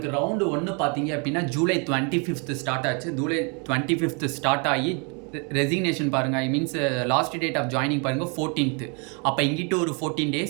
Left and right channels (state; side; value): quieter; left; 34.7 dB